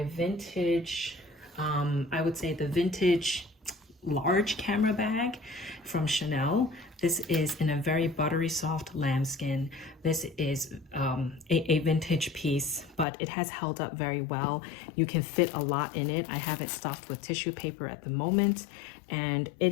vintage, I would say the vintage large camera bag from Chanel. This is in a very buttery soft lambskin. This is a vintage piece, but it has held up very well. You can fit a lot in it. I have it stuffed with tissue paper at the moment, and it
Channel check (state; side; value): drops out; right; at 13.1 s